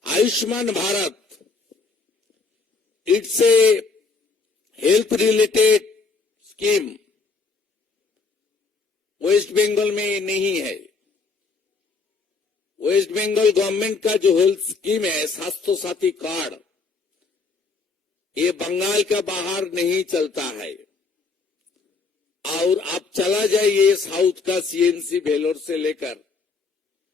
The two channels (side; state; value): right; quieter; 4.3 dB